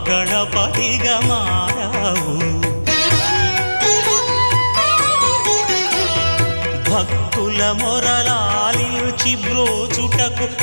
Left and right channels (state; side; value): inverted; both; correlation -1.00